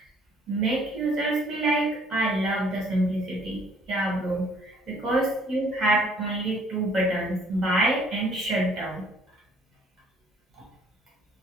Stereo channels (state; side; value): normal; both; correlation 0.60